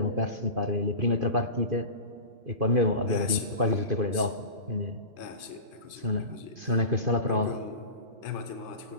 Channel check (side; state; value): left; late; 2.5 ms